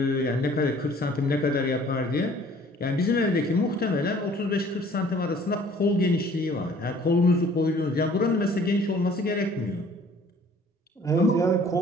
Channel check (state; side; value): normal; both; correlation 0.54